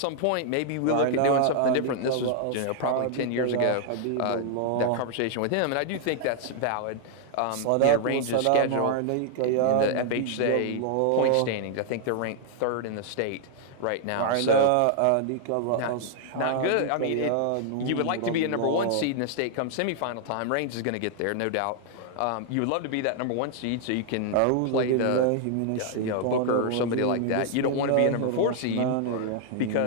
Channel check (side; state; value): both; different; correlation 0.00